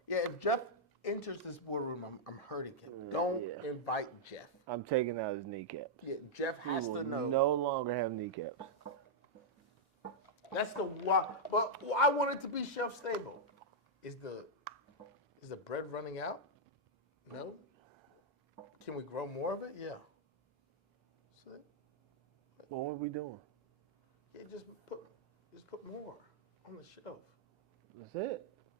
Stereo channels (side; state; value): both; normal; correlation -0.06